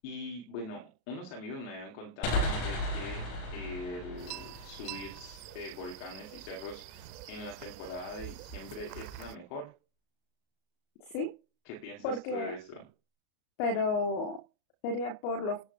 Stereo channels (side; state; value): right; late; 33 ms